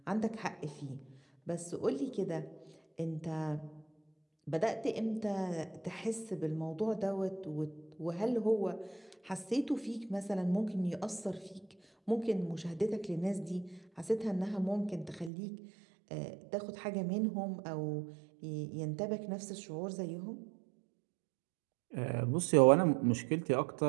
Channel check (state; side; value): drops out; left; at 15.3 s